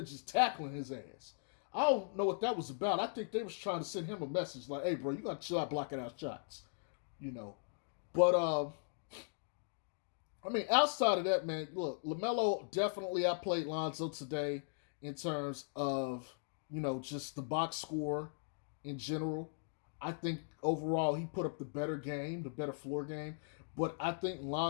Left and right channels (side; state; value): right; silent; digital silence